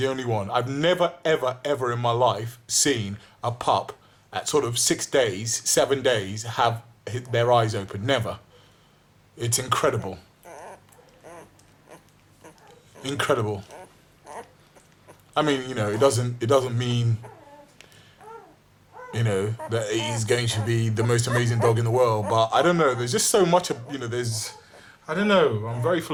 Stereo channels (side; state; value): both; identical; correlation 1.00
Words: only one. I've never, ever, ever in my life seen a pup at sort of 6 days, 7 days, have their eyes open. Never. It's incredible. Incredible. I mean, it doesn't mean, that he's going to be the most amazing dog in the world, but I don't know, there's just so much of, I don't know, I'm very